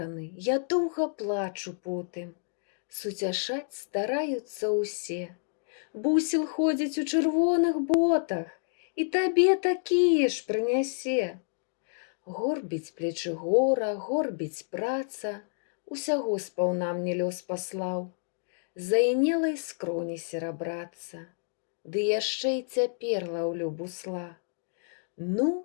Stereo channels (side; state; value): right; silent; digital silence